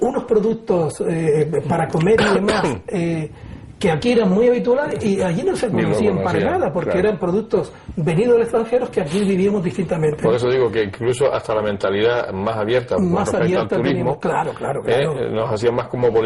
unos productos para comer y demás, que aquí eran muy habituales y allí no se conocían para nada, porque eran productos venidos del extranjero que aquí vivíamos distintamente. Por eso digo que incluso hasta la mentalidad más abierta al turismo, claro. nos hacía más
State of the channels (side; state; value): both; identical; correlation 1.00